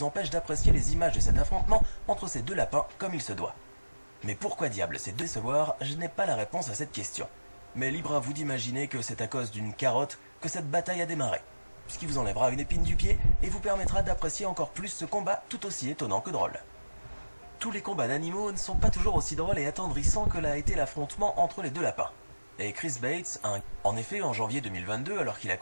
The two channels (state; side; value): inverted; both; correlation -1.00